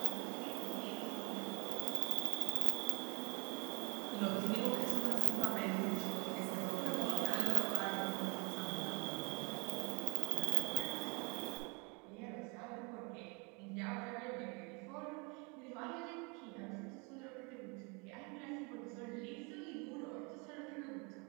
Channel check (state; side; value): quieter; left; 31.5 dB